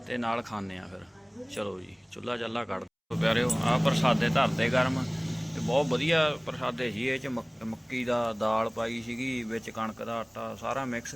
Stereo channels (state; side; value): identical; both; correlation 1.00